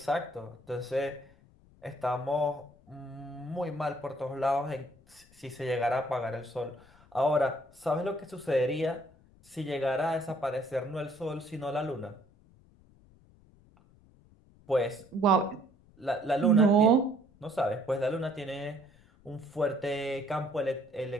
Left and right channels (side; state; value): left; noise; rumble, 27 dB below the sound